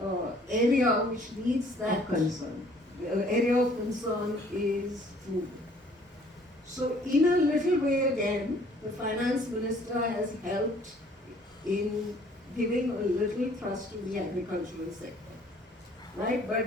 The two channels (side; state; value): both; normal; correlation 0.58